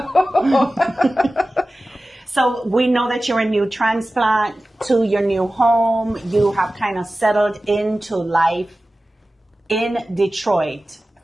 So we know that you're a new transplant to your new home. You have kind of settled into life in Detroit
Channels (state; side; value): normal; both; correlation 0.96